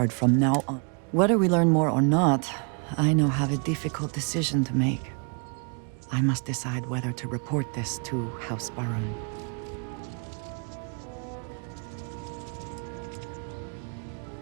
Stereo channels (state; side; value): quieter; left; 37.9 dB